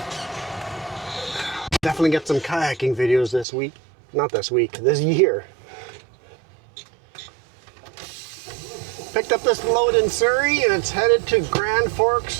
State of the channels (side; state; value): left; drops out; at 3.5 s